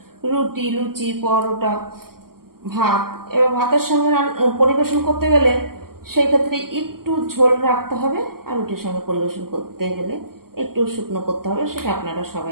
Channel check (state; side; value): late; left; 0.93 ms